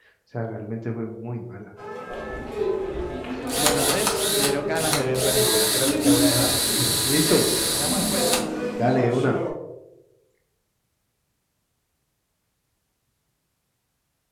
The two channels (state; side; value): identical; both; correlation 1.00